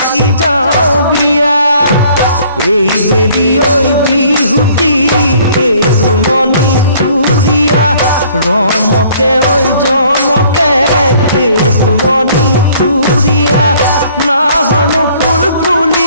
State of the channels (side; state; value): both; inverted; correlation -0.58